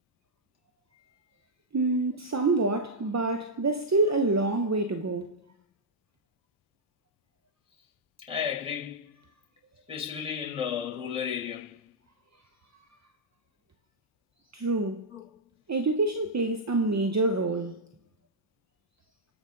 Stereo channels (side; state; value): both; normal; correlation -0.07